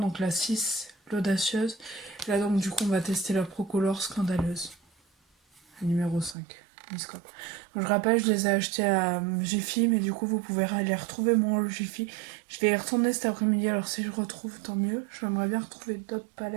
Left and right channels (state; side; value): drops out; left; at 6.4 s